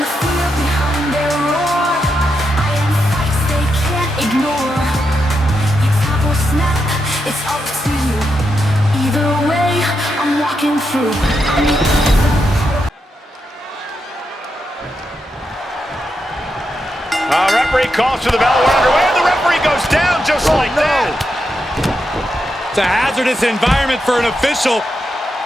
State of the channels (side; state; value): both; normal; correlation 0.84